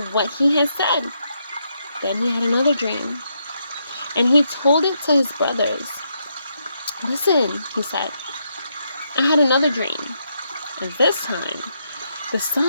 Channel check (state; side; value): inverted; both; correlation -0.79